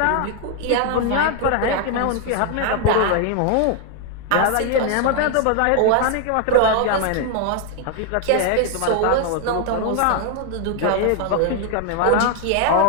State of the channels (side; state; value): both; different; correlation 0.00